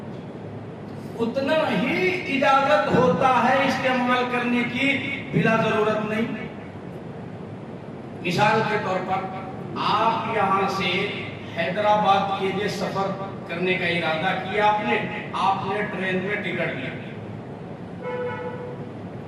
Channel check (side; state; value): both; identical; correlation 1.00